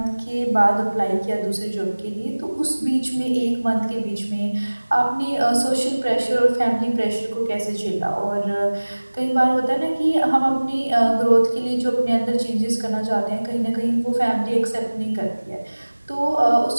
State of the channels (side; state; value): both; inverted; correlation -1.00